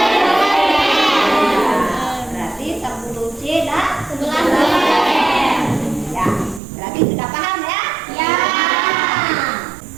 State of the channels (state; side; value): drops out; left; at 6.6 s